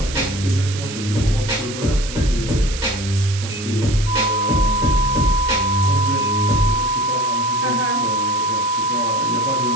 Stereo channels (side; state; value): right; noise; hiss, 10 dB below the sound